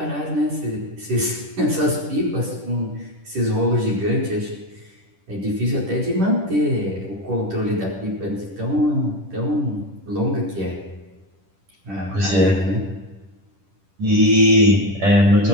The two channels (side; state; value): left; late; 10 ms